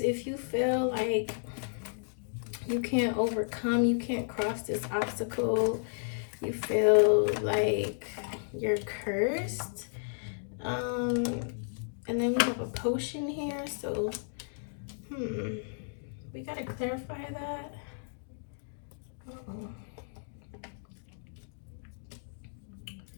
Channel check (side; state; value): right; silent; digital silence